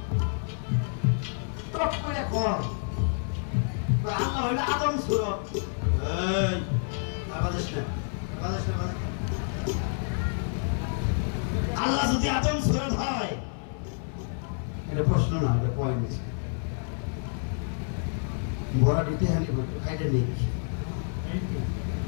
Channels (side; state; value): right; silent; 59 dB below the other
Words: টপ করে কর আল্লাহ হইল আদম সূরত। এই বাদেশ না, বাদেশ না, বাদেশ না। আল্লাহ যদি আদম সূরত হয়, এটা প্রশ্ন না, এটা পয়েন্ট। বড় দিতে হানি বলতো খাইতে নেই,